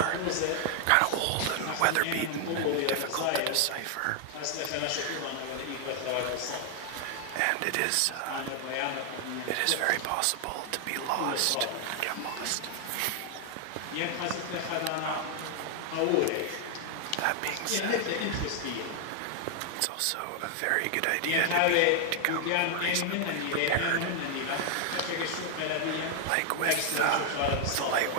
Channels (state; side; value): different; both; correlation 0.00